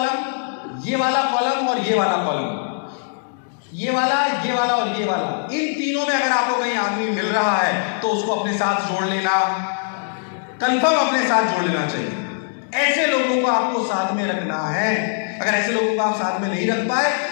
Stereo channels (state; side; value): silent; right; digital silence